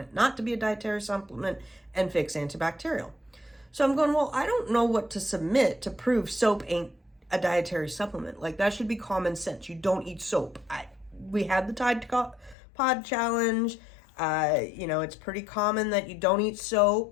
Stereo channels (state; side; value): drops out; right; at 12.6 s